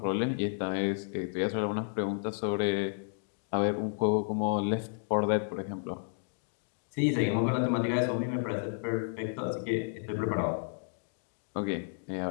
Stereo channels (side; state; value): right; silent; digital silence